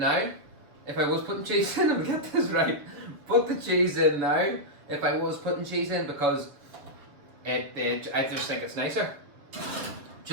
If I was putting cheese in, I'll get this right. Put the cheese in now. If I was putting cheese in, because I just think it's nicer.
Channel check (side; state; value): left; late; 6.8 ms